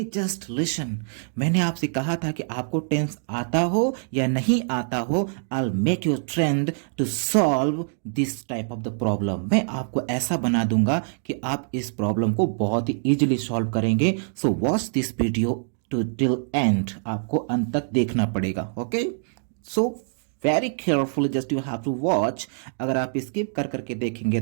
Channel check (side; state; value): left; silent; digital silence